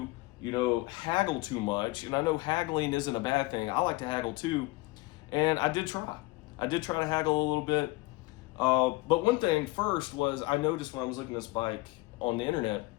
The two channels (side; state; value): right; quieter; 22.0 dB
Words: haggle too much. And I know haggling isn't a bad thing. I like to haggle too, and I did try. I did try to haggle a little bit. But one thing first was I noticed when I was looking at this bike on the internet,